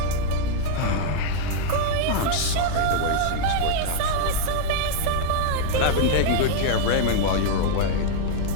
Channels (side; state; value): both; different; correlation -0.01